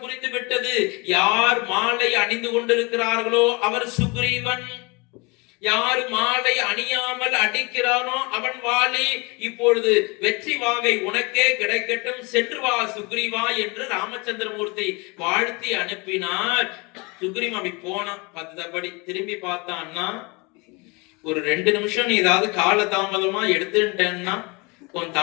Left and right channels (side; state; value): right; quieter; 28.0 dB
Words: புரிந்து விட்டது, யார் மாலை அணிந்து கொண்டிருக்கிறார்களோ அவர் சுக்ரீவன், யாரு மாலை அணியாமல் அடிக்கிறானோ அவன் வாலி. இப்பொழுது வெற்றி வாகை உனக்கே கிடைக்கட்டும், சென்று வா சுக்ரீவா என்று ராமச்சந்திரமூர்த்தி வாழ்த்தி அனுப்பினார். சுக்ரீவன் அப்படி போனான். பத்தபடி திரும்பி பார்த்தான்னா, ஒரு 2 நிமிஷம் நீ ஏதாவது கால தாமதமா எடுத்துட்டேன்னா உன்